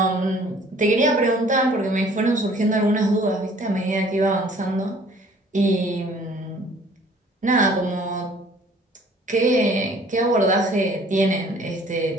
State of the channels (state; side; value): normal; both; correlation 0.55